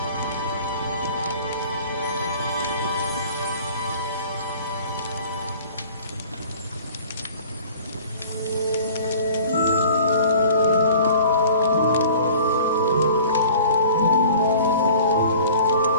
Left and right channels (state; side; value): inverted; both; correlation -0.47